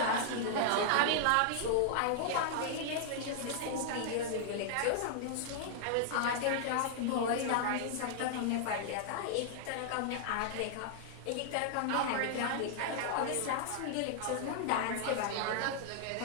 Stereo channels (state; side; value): different; both; correlation -0.01